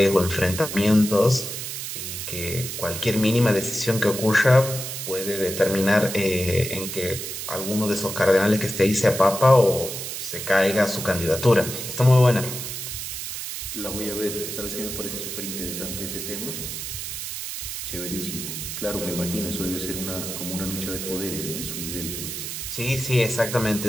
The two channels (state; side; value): noise; right; hiss, 6 dB below the sound